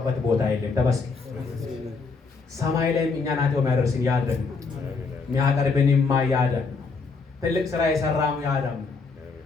ቦታ የለም። ተመስገን። ሰማይ ላይ እኛ ናቸው ማይደርስን ያደን ነው የሚያቀርብን የማያደን ነው። ትልቅ ስራ የሰራው ያዳም ነው።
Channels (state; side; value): quieter; right; 4.5 dB